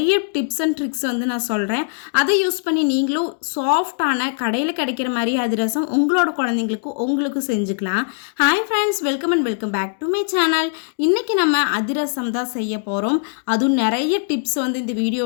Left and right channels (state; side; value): silent; right; digital silence